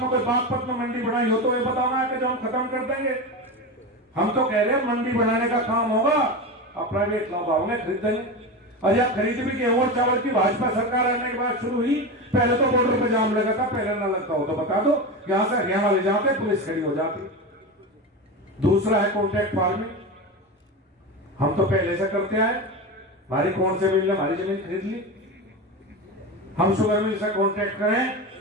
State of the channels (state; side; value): normal; both; correlation 0.22